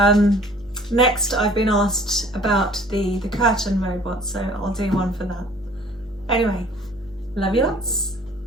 Next, I've been asked about the curtain robot, so I'll do one for that. Anyway, love you lots.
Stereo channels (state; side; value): normal; both; correlation 0.53